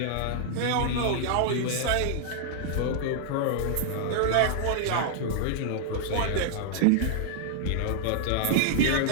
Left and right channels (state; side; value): different; both; correlation -0.01